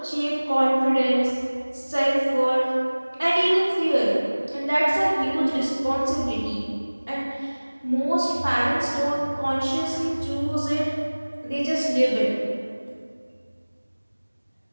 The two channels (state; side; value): inverted; both; correlation -1.00